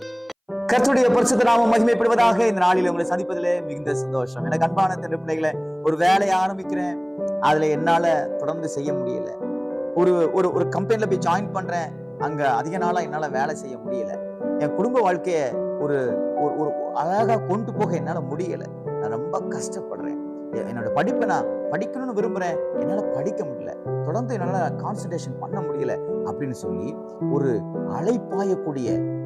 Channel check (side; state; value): both; identical; correlation 1.00